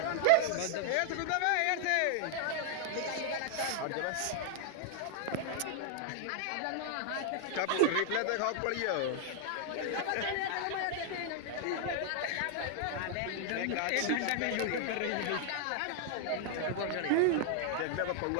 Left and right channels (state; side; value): different; both; correlation 0.00